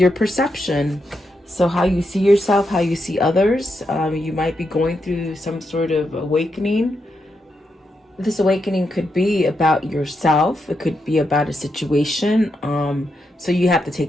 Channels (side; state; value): both; normal; correlation 0.83